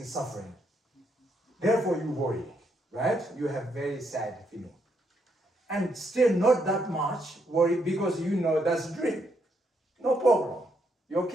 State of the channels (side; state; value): both; normal; correlation 0.76